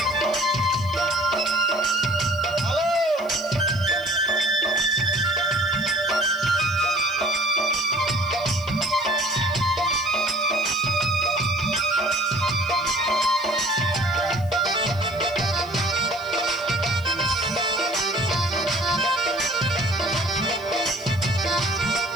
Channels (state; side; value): noise; left; hiss, 23 dB below the sound